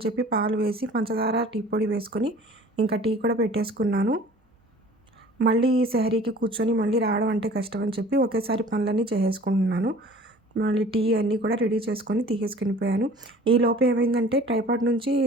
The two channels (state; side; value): normal; both; correlation 0.47